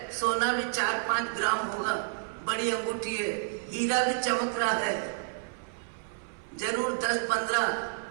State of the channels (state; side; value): silent; left; 58 dB below the other